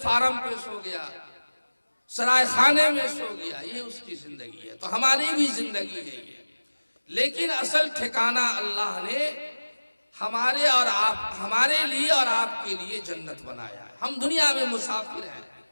पे सो गया, सराय खाने में सो गया, ये उसकी जिंदगी है। तो हमारी भी जिंदगी है ये, लेकिन असल ठिकाना अल्लाह ने हमारे लिए और आपके लिए जन्नत बनाया है। हम दुनिया में मुसाफिर हैं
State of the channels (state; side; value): inverted; both; correlation -1.00